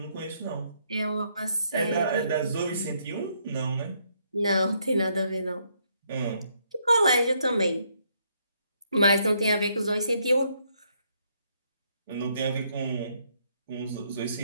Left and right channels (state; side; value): inverted; both; correlation -0.73